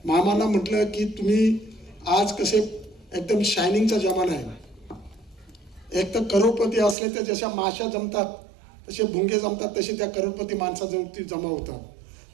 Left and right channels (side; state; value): left; drops out; at 7.0 s